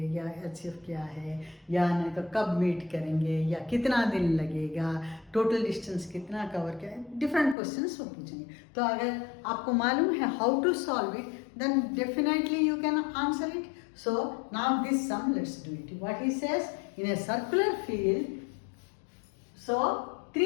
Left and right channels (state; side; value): drops out; right; at 7.6 s